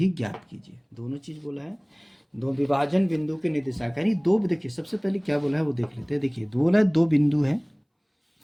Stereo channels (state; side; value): identical; both; correlation 1.00